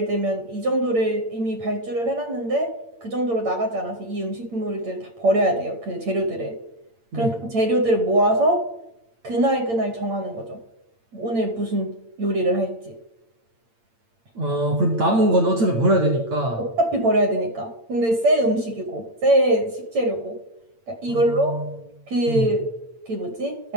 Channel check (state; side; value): late; left; 8.8 ms